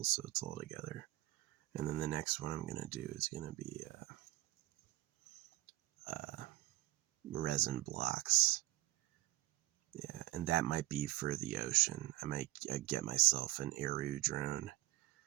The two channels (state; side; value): quieter; left; 18.2 dB